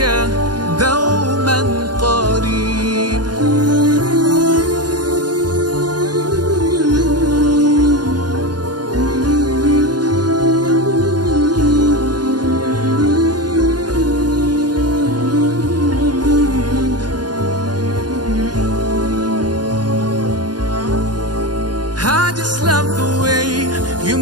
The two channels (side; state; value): left; late; 0.70 ms